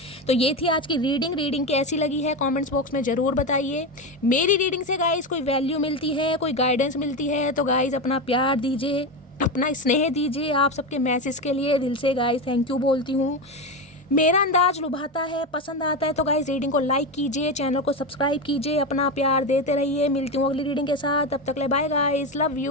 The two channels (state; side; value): normal; both; correlation 0.16